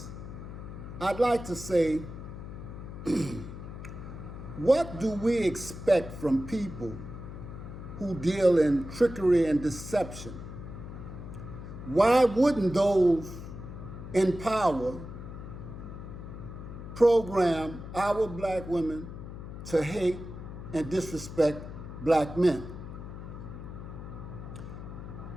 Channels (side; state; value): left; noise; hum, 10 dB below the sound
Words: I'd like to say, what do we expect from people who deal in trickery and deception? Why wouldn't those in power program our black women to hate and disrespect black men?